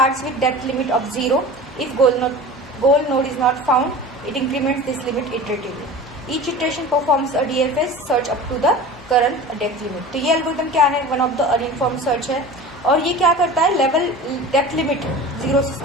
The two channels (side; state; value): both; normal; correlation 0.36